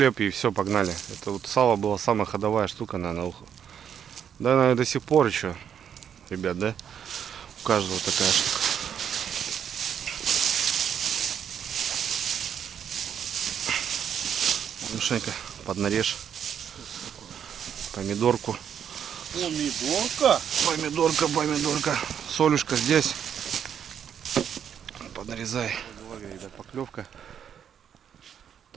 и все, погнали. Это вот сало была самая ходовая штука, наверное. Да, наверное, до сих пор еще, ребят, да? У каждого такая штука. Мишенька, поднарежь. Помидорку. Помидорка. Солюшка здесь. Подрезай. Ребят, поклевка.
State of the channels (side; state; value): left; quieter; 8.5 dB